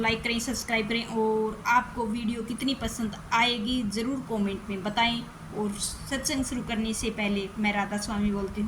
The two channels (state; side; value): identical; both; correlation 1.00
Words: करें, सब्सक्राइब करें और आपको वीडियो कितनी पसंद आएगी ज़रूर कमेंट में बताएं। और सत्संग शुरू करने से पहले मैं राधा स्वामी बोलती